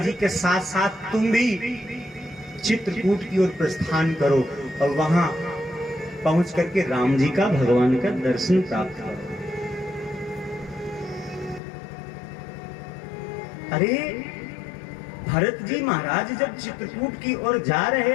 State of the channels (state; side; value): drops out; right; at 11.6 s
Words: के साथ साथ तुम भी चित्रकूट की ओर प्रस्थान करो और वहां पहुंच करके राम जी का, भगवान का दर्शन प्राप्त करो। अरे भरत जी महाराज जब चित्रकूट की ओर जा